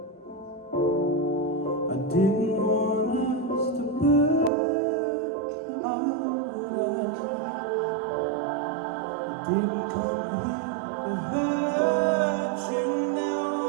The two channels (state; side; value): drops out; left; at 4.5 s